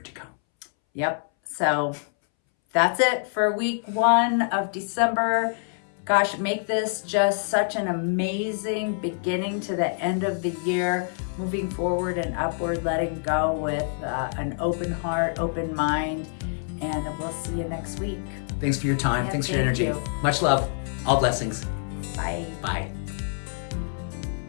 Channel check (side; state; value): right; silent; 61 dB below the other